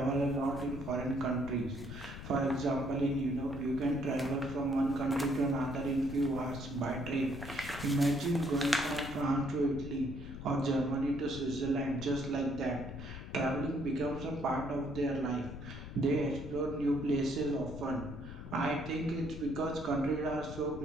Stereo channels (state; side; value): noise; left; rumble, 10 dB below the sound